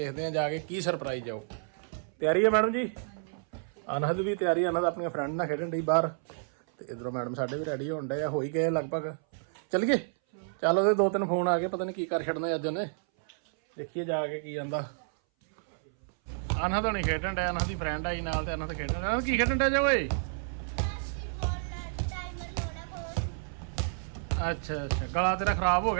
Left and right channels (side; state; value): left; silent; 58 dB below the other